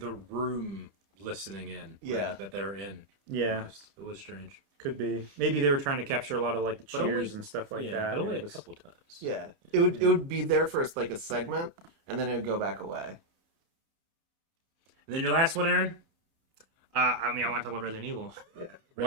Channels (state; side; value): late; left; 30 ms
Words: room listening in. Yeah. That they're in. Yeah. It was strange. Could be. Maybe they were trying to capture a lot of like the But only- cheers and stuff like that. But only It a was- couple times. yeah, it would be there for like a segment, and then it would go back away. And then your last one, Aaron? I mean, I want to talk about Resident Evil. Yeah.